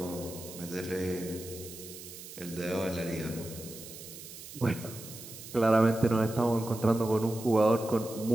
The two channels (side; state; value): right; noise; hiss, 14 dB below the sound